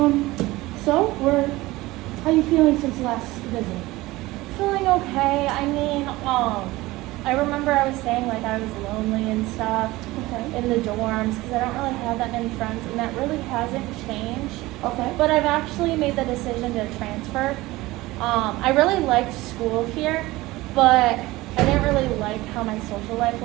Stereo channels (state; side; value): quieter; left; 19.3 dB